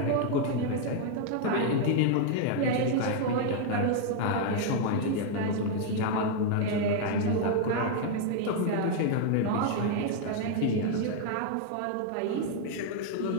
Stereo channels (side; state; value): both; different; correlation 0.00